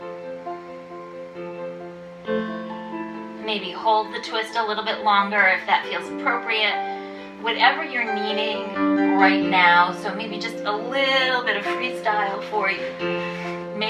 Maybe hold the twist a little bit longer if that feels appropriate. Whatever you're needing right now, so maybe just a little bit of freestyle for you.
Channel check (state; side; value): identical; both; correlation 1.00